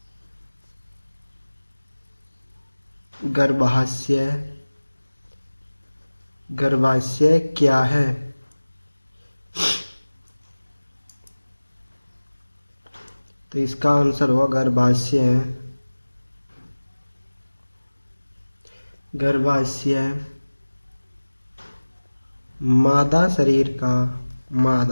गर्भाशय क्या है। तो इसका आंसर होगा गर्भाशय मादा शरीर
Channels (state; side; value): inverted; both; correlation -1.00